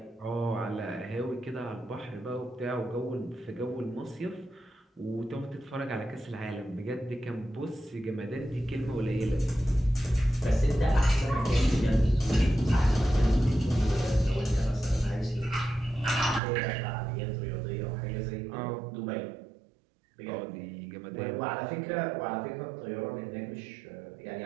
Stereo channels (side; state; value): left; drops out; at 16.4 s